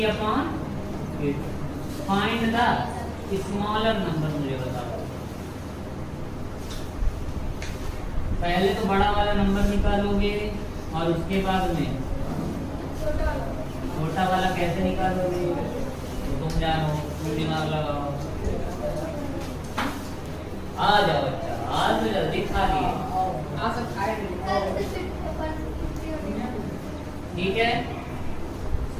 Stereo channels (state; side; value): identical; both; correlation 1.00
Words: Find the smaller number, मुझे बताओ। पहले तो बड़ा वाला नंबर निकालोगे और उसके बाद में छोटा वाला कैसे निकालोगे? तो तुम जानो, तुम दिमाग लगाओ। आ जाओ बच्चा, आज तो जल्दी खा लिए। ठीक है,